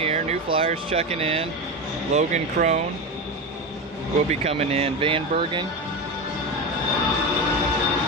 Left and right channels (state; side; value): normal; both; correlation 0.19